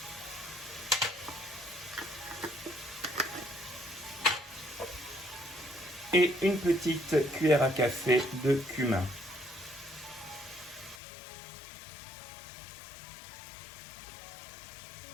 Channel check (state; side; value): drops out; right; at 11.0 s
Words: et une petite cuillère à café de cumin.